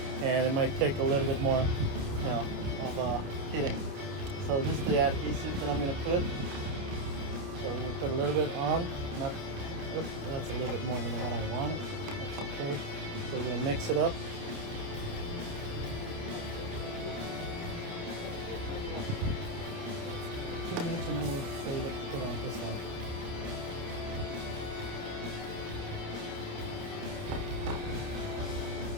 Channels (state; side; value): late; left; 29 ms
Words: And it might take a little bit more, you know, of hitting. So this is the adhesive that I'm gonna put. So I'm gonna put a little bit on. Oops, that's a little bit more than what I want. That's okay. So we're gonna mix it up. Too much, and we'll save it. Put on this one.